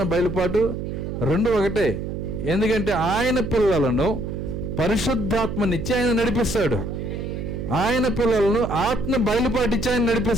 బయలుపాటు రెండు ఒకటే. ఎందుకంటే ఆయన పిల్లలను పరిశుద్ధాత్మనిచ్చి ఆయన నడిపిస్తాడు. ఆయన పిల్లలను ఆత్మ బయలుపాటిచ్చి ఆయన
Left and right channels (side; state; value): right; noise; hum, 5 dB below the sound